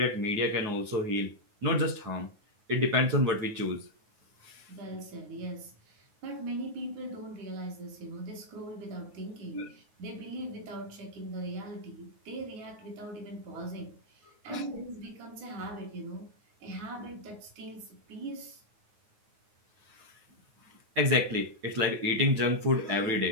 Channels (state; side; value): late; left; 9.4 ms